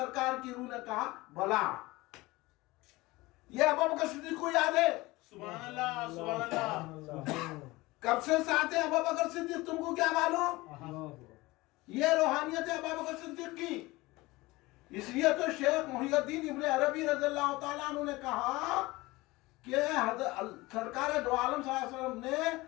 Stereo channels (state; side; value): quieter; right; 20.9 dB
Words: کی روح نے کہا بلا. یہ ابوبکر صدیق کو یاد ہے. سبحان اللہ سبحان اللہ. کب سے ساتھ ہے ابوبکر صدیق, تم کو کیا معلوم؟ یہ روحانیت ہے ابوبکر صدیق کی. اس لیے تو شیخ محی الدین ابن عربی رضی اللہ تعالیٰ عنہ نے کہا کہ سرکار دو عالم صلی اللہ علیہ وسلم نے